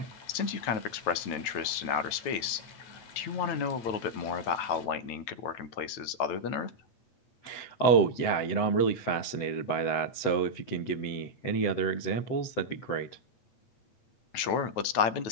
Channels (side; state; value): right; late; 9.1 ms